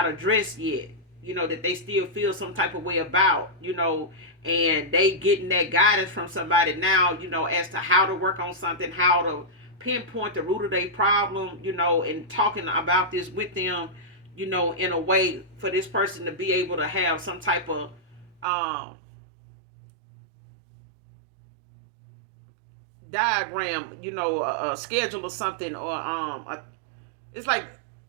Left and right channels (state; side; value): drops out; left; at 18.4 s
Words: addressed yet, that they still feel some type of way about, and they getting that guidance from somebody now, as to how to work on something, how to pinpoint the root of their problem, and talking about this with them, in a way for this person to be able to have some type of diagram, a schedule or something, or it's like